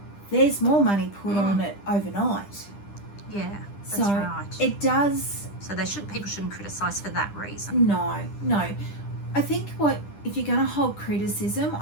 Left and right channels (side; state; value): right; late; 10 ms